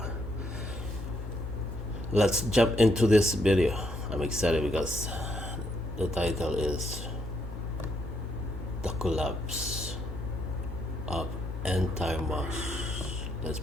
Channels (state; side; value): normal; both; correlation 0.74